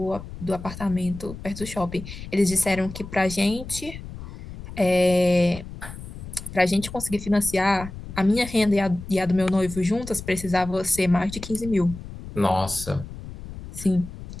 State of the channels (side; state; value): left; noise; rumble, 12 dB below the sound